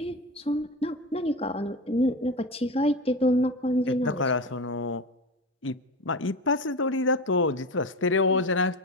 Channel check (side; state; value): both; normal; correlation 0.23